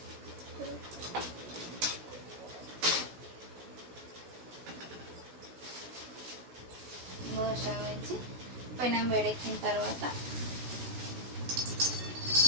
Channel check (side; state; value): left; late; 16 ms